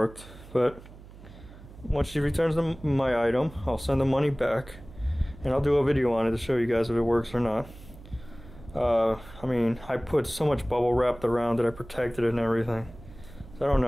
But once she returns my item, I'll send the money back, and I'll do a video on it to show you guys if it works or not. I mean, I put so much bubble wrap around it, I protected it and everything. So I don't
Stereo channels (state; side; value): noise; right; hum, 18 dB below the sound